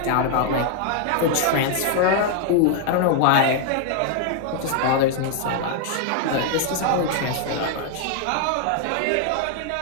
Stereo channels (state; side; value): different; both; correlation 0.00